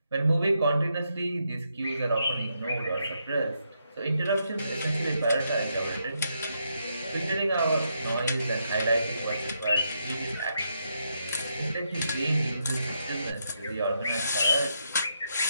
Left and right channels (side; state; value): both; inverted; correlation -0.80